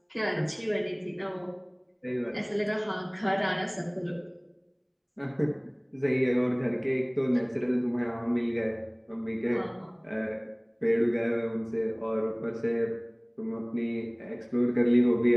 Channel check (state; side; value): identical; both; correlation 1.00